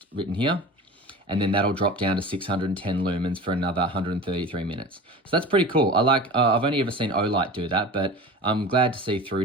written here. And then that'll drop down to 610 lumens for another 133 minutes. So that's pretty cool. I like, I've only ever seen Olight do that, but I'm glad to see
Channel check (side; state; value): both; normal; correlation 0.35